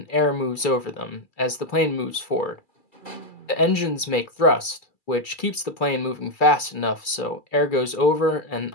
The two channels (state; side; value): late; right; 2.3 ms